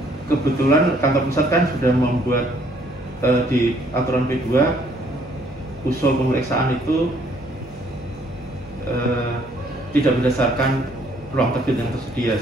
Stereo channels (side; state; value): both; normal; correlation 0.64